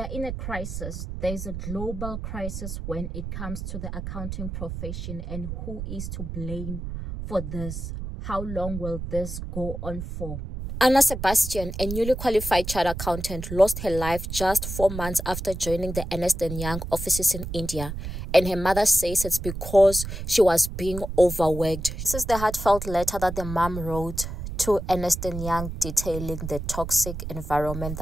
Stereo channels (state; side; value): noise; right; rumble, 7 dB below the sound